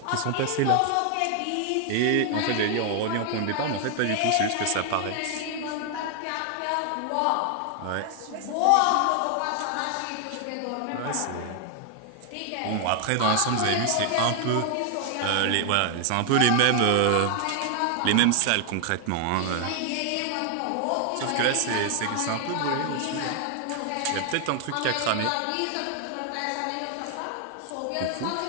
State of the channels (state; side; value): different; both; correlation 0.00